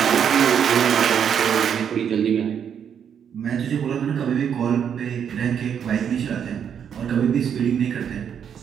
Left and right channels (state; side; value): quieter; left; 8.1 dB